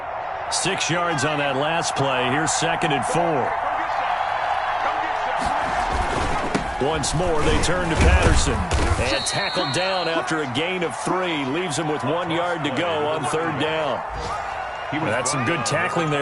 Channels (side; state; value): both; identical; correlation 1.00